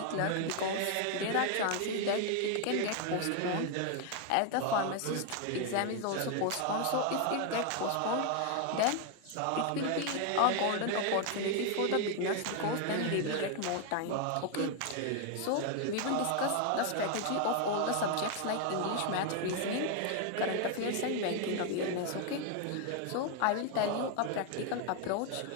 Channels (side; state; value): both; different; correlation 0.01